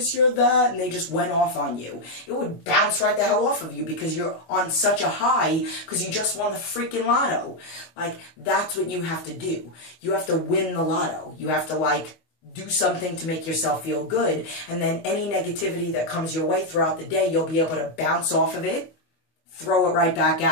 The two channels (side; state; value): right; late; 25 ms